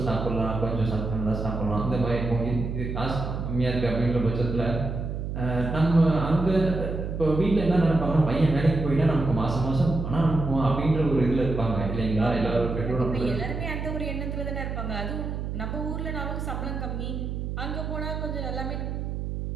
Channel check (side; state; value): right; noise; hum, 4 dB below the sound